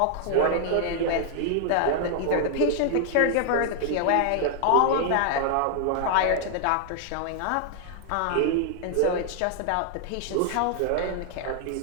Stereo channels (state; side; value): different; both; correlation 0.00